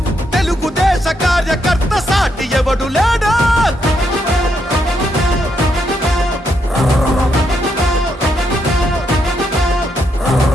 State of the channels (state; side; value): normal; both; correlation 0.78